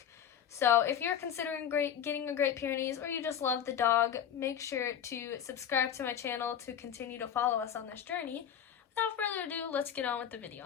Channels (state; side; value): quieter; right; 9.1 dB